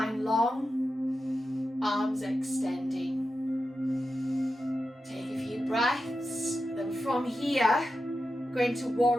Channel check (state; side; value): normal; both; correlation 0.90